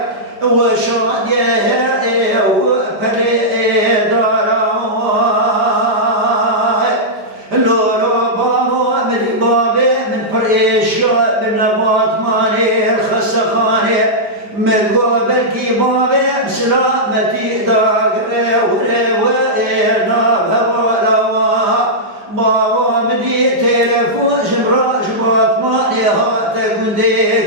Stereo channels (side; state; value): left; late; 5.0 ms